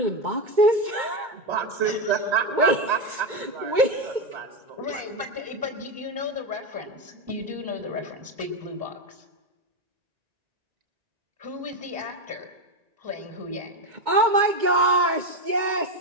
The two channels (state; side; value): late; left; 2.3 ms